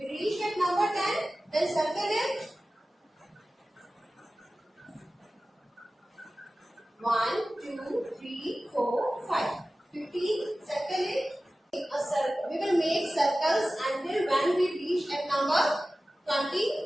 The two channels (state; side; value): normal; both; correlation 0.96